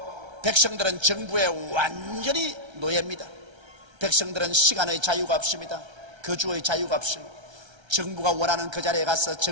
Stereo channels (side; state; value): left; late; 1.3 ms